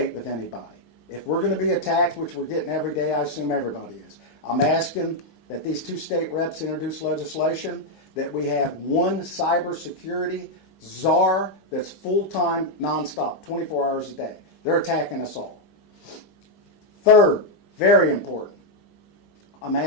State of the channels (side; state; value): right; late; 19 ms